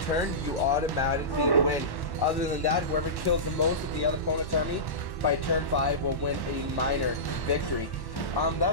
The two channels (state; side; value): late; right; 1.1 ms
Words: you automatically win. Other than that, whoever kills the most of the other opponent's army by turn 5 will win a minor victory.